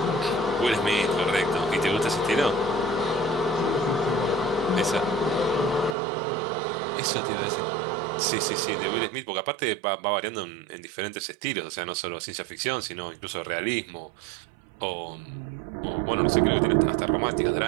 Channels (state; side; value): drops out; left; at 6.0 s